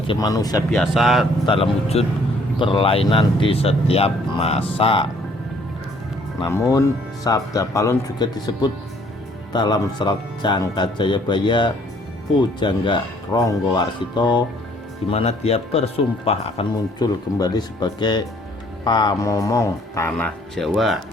manusia biasa dalam wujud berlainan di setiap masa. Namun, Sabda Palon juga disebut dalam serat Jangka Jayabaya Pujangga Ronggowarsito, di mana dia bersumpah akan muncul kembali sebagai pamomong tanah Jawa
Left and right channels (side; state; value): both; normal; correlation 0.61